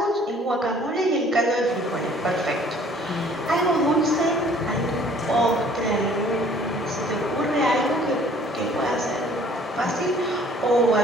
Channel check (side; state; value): both; normal; correlation 0.55